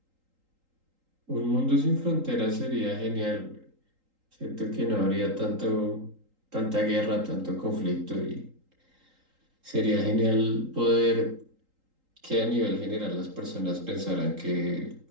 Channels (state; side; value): late; left; 3.8 ms